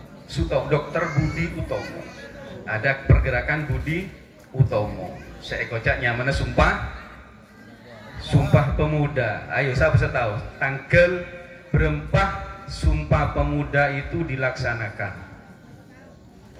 Budi Utomo. Ada pergerakan Budi Utomo. Saya kocak nyamannya Sumpah Pemuda. Ayo siapa bisa tahu tanggal berapa Sumpah Pemuda itu dilaksanakan?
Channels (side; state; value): both; identical; correlation 1.00